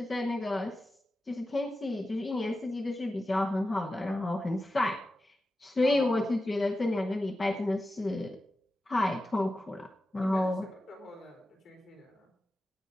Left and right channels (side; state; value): both; normal; correlation 0.93